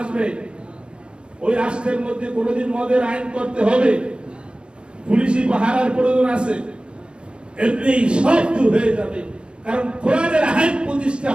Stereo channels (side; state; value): left; late; 0.055 ms